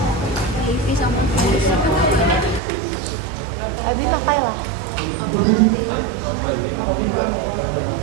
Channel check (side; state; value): left; drops out; at 2.6 s